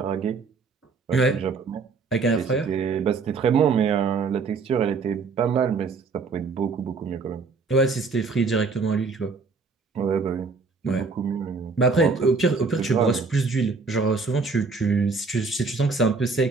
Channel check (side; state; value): left; quieter; 4.5 dB